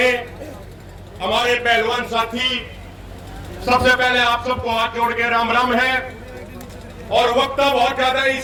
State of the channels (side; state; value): both; identical; correlation 1.00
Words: हमारे पहलवान साथी, सबसे पहले आप सबको हाथ जोड़ के राम राम है। और वक्त बहुत ज्यादा है